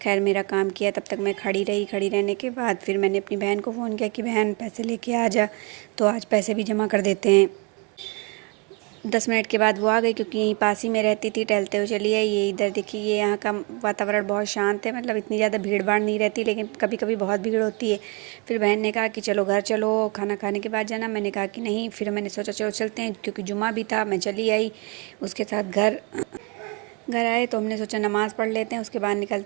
खैर मेरा काम किया। तब तक मैं खड़ी रही। खड़ी रहने के बाद फिर मैंने अपनी बहन को फ़ोन किया कि बहन पैसे लेके आ जा, तो आज पैसे भी जमा कर देते हैं। 10 मिनट के बाद वो आ गई, क्योंकि यहीं पास ही में रहती थी। टहलते हुए चली आई। ये इधर देखिए, ये यहाँ का वातावरण बहुत शांत है, मतलब इतनी ज़्यादा भीड़ भाड़ नहीं रहती, लेकिन कभी कभी बहुत भीड़ होती है। फिर बहन ने कहा कि चलो घर चलो, खाना खाने के बाद जाना। मैंने कहा कि नहीं। फिर मैंने सोचा चलो चलते हैं, क्योंकि जुमा भी था। मैं चली आई। उसके साथ घर घर आए तो हमने सोचा नमाज़ पढ़ लेते हैं, उसके बाद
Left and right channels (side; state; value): left; quieter; 29.3 dB